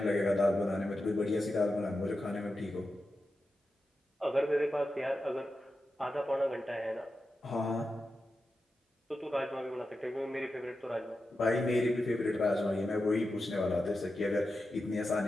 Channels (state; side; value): normal; both; correlation 0.91